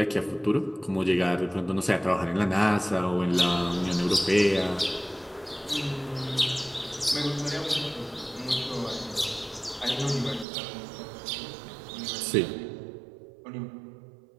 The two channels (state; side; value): drops out; left; at 10.5 s